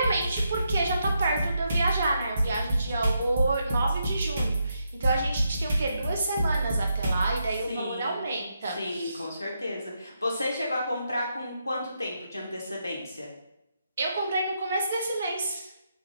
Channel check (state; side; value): inverted; both; correlation -0.81